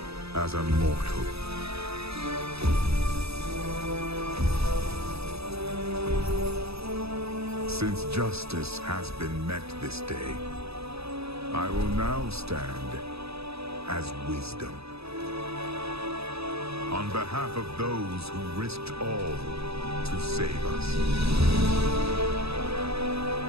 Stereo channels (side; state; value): left; late; 0.78 ms